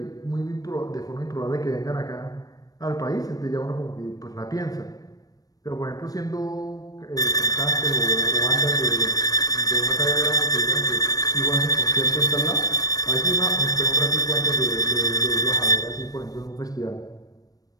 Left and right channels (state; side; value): late; right; 0.18 ms